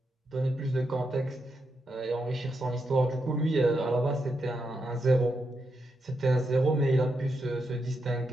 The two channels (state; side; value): normal; both; correlation 0.83